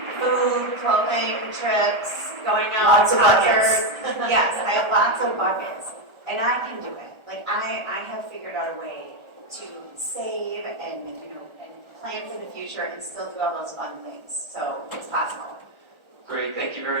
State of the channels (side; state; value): left; late; 1.4 ms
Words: Food, clothing, trips, going out, Lots of buckets. concerts. Yes, I have lots of buckets. And I can do it. Like I have figured out a way to save and plan for the future and still do all those fun things. So it's possible. Great, thank you